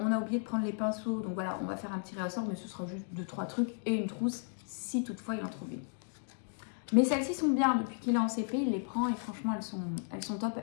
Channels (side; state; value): right; silent; 55 dB below the other